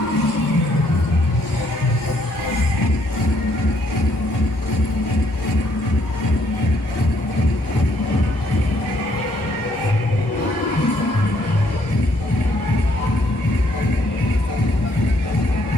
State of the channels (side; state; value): right; late; 1.6 ms